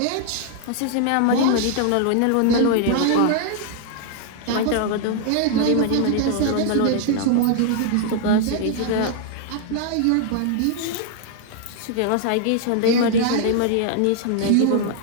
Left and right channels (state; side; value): different; both; correlation 0.00